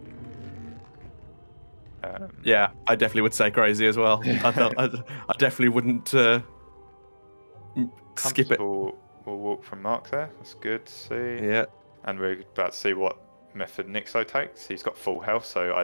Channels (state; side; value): inverted; both; correlation -1.00